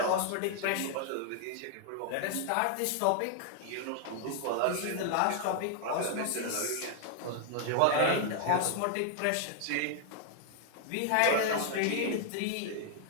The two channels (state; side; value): different; both; correlation 0.00